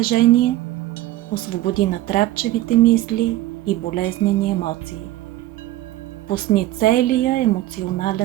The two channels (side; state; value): left; quieter; 15.7 dB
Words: Освободи натрапчевите мисли и болезнени емоции. Пусни целия